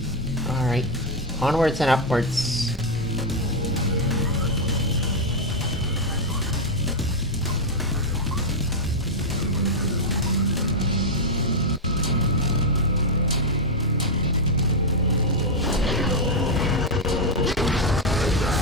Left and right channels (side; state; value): both; normal; correlation 0.00